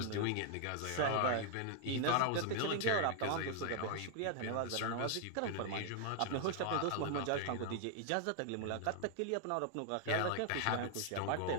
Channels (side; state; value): both; different; correlation 0.00